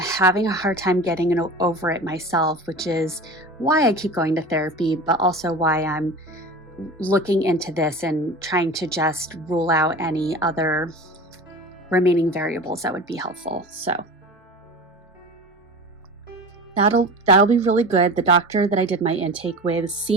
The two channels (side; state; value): both; normal; correlation 0.34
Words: a hard time getting over it myself, which is why I keep going to therapy, but also why I'm looking into this and trying to just rule out any other remaining variables that would be helpful. So that'll be really good. The doctor that I did my intake with